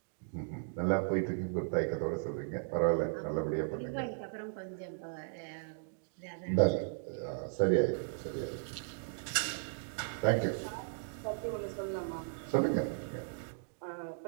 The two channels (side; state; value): left; silent; digital silence